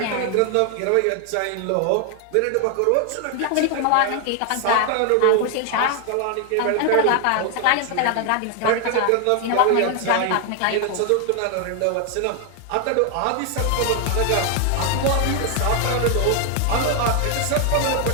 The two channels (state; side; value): different; both; correlation 0.00